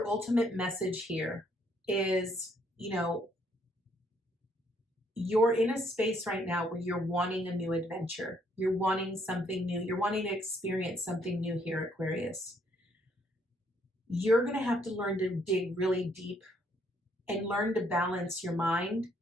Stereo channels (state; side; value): normal; both; correlation 0.68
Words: ultimate message here is, you're in a space right now where you're wanting a new adventure. You're wanting something new. You're wanting to experience something new here, Aquarius. You're going to have to learn to dig really deep and learn to balance your mind